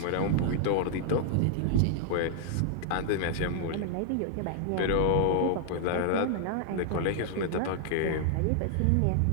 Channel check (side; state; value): both; different; correlation -0.01